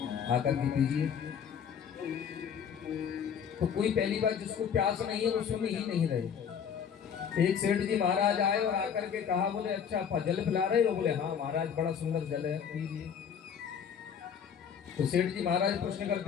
आकर के पीजिए। तो कोई पहली बार जिसको प्यास नहीं है वो सुन ही नहीं रहे। एक सेठ जी महाराज आए और आकर के कहा, बोले अच्छा जल पिला रहे हो? बोले हाँ महाराज बड़ा सुंदर जल है, पीजिए। तो सेठ जी महाराज प्रश्न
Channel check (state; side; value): quieter; right; 7.6 dB